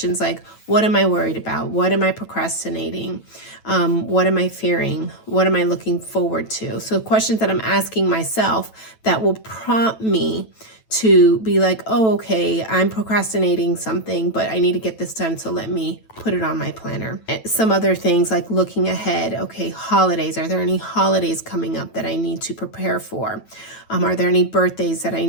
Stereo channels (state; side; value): late; right; 9.1 ms